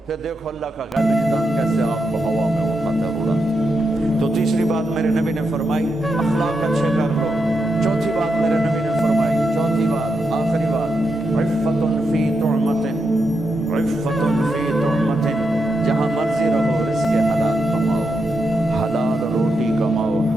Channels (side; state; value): both; normal; correlation 0.84